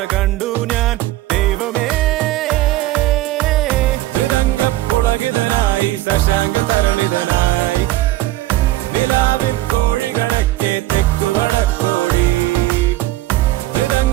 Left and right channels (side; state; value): left; quieter; 16.3 dB